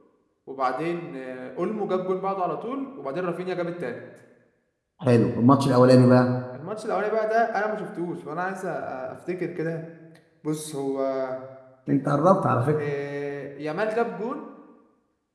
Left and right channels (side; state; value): both; identical; correlation 1.00